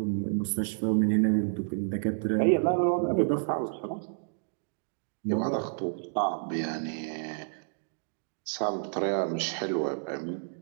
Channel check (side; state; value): left; silent; digital silence